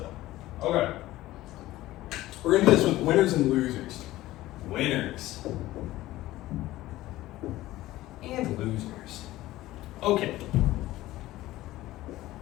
Okay. We're going to do this with winners and losers. Winners. And losers. Okay.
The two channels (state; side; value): quieter; right; 16.4 dB